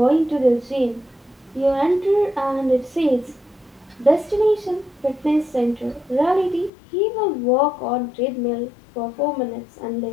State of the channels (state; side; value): drops out; right; at 6.7 s